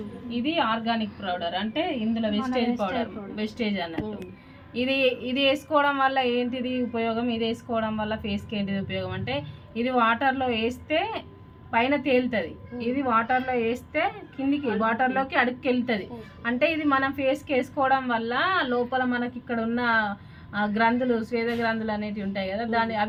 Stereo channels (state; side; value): identical; both; correlation 1.00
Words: ఇది ఆర్గానిక్ పౌడర్ అంటే ఇందులో వెస్టేజ్ అన్నట్టు. ఇది వేసుకోవడం వల్ల ఏంటిది ఉపయోగం, ఇది వేసుకోవడం వల్ల ఫేస్కి ఏంటిది ఉపయోగం అంటే ఇది వాటర్లో వేస్తే పైన తేలుతుంది, ఇది వాటర్లో వేస్తే కిందికి వాటర్లోకి అడుగుకి వెళ్తుంది. అంటే ఇది మనం ఫేస్కి వేసుకోవడం వల్ల లోపల మనకి ఇక్కడ ఉన్న గ్రంథులు స్వేద గ్రంథులు అనేటివి ఉంటాయి కదా,